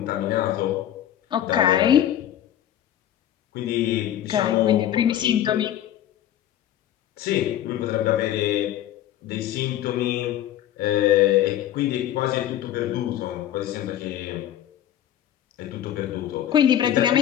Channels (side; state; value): right; quieter; 11.6 dB